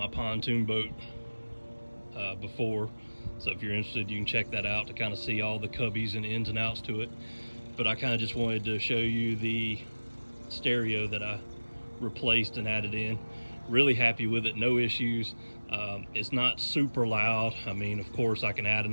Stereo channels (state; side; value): inverted; both; correlation -1.00